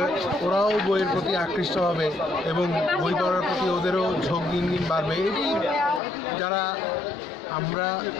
ওরাও বইয়ের প্রতি আকৃষ্ট হবে এবং বই পড়ার প্রতি ওদেরও ঝোঁক দিন দিন বাড়বে। এটি যারা আমরা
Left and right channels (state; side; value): drops out; right; at 6.0 s